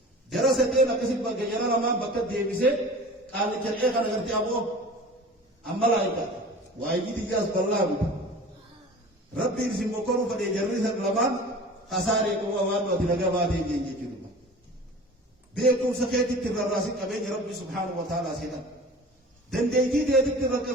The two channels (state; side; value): normal; both; correlation 0.40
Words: جرستين أكسب بجرا لما بكت ديبسه قال كريه كان قرتي أبو أما لا يكاد وايجي تجاز بالله ربي يرسم بكرو فدي جريس لمان خسارة كوا وان وتلقى بعدين يجي كذا بيكم سكيت الراسين أبين ربي سبحانه وتعالى سيدا دنديتي ديت